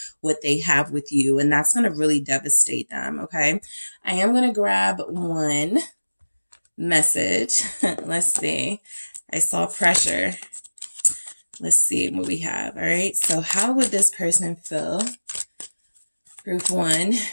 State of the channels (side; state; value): both; inverted; correlation -1.00